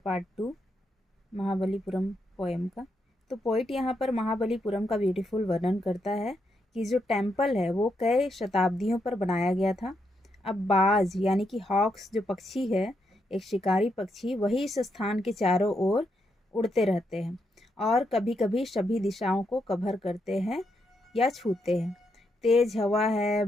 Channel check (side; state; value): both; normal; correlation 0.80